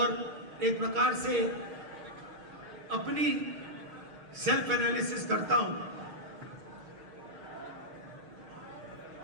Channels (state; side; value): late; left; 6.4 ms